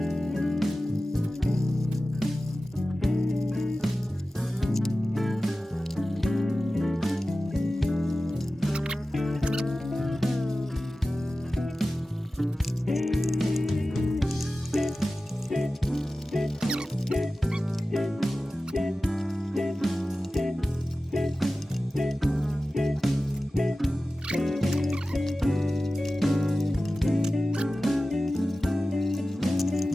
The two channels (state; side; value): normal; both; correlation 0.95